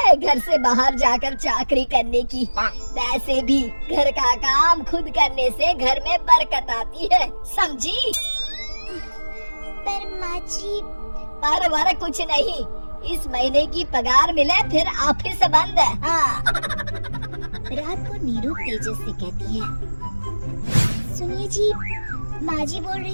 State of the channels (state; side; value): inverted; both; correlation -1.00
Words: घर से बाहर जाकर चाकरी करने की? वैसे भी घर का काम खुद करने से घर में बरकत आती है, समझी? पर माँ जी। पर वर कुछ नहीं, इस महीने की पगार मिले फिर ऑफिस बंद है। हाँ। रात को नीरू तेजस से कहती है, सुनिए जी, माँ जी बोल